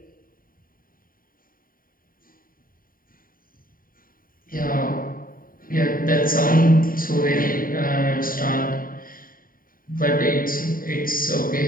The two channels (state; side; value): late; right; 0.41 ms